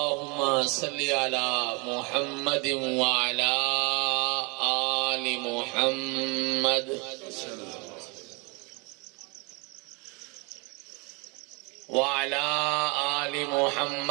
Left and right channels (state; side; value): quieter; left; 30.9 dB